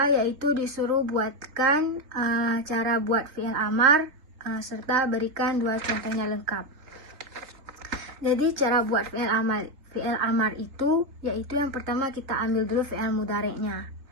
yaitu disuruh buatkan cara buat fi'il amar serta berikan 2 contohnya lengkap. Jadi cara buat fi'il amar itu yaitu yang pertama kita ambil dulu fi'il mudhari'nya.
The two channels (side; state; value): left; late; 4.0 ms